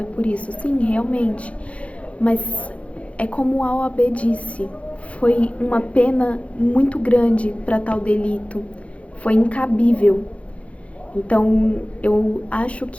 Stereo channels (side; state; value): right; late; 0.063 ms